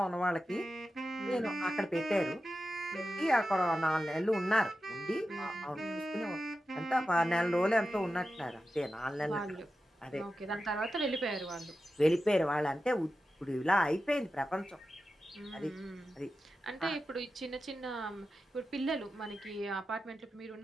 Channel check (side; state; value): both; normal; correlation 0.92